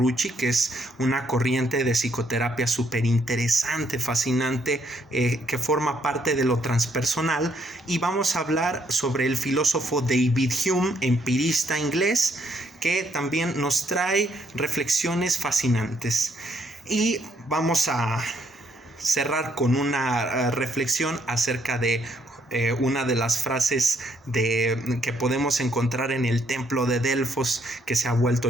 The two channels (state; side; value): normal; both; correlation 0.71